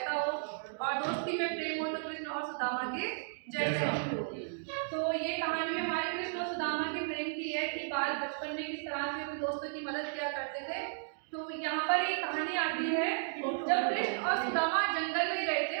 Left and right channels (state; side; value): silent; left; digital silence